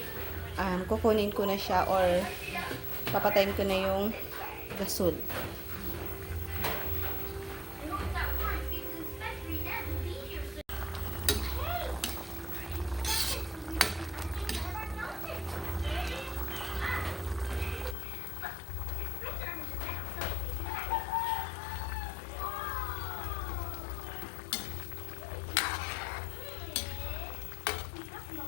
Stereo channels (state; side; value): drops out; right; at 17.9 s